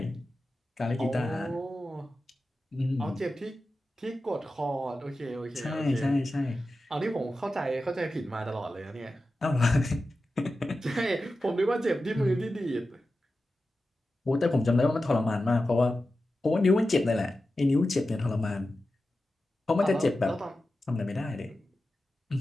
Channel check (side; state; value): both; normal; correlation 0.92